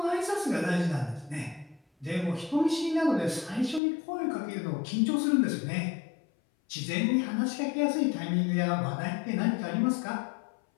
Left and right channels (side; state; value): right; drops out; at 3.8 s